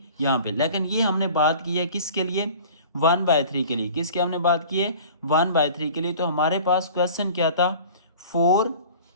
यहाँ पे। लेकिन ये हमने बात की है किसके लिए, 1/3 के लिए। किसके हमने बात की है, 1/3 के लिए। तो हमारे पास क्वेश्चन क्या था, 4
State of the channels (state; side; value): inverted; both; correlation -0.43